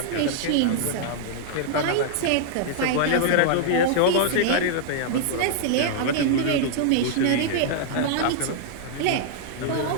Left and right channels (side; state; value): both; different; correlation -0.01